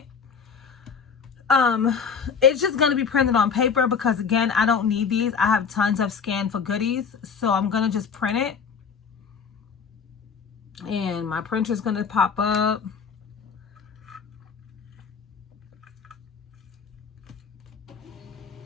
It's just going to be printed on paper because, again, I don't need these. I have tons of scan for goodies. So I'm going to just print it. And my printer is going to pop up.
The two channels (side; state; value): right; quieter; 6.2 dB